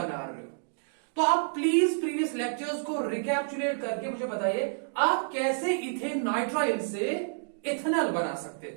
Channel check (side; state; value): left; silent; digital silence